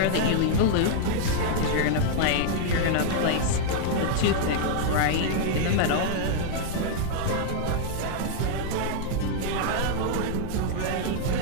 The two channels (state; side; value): different; both; correlation -0.01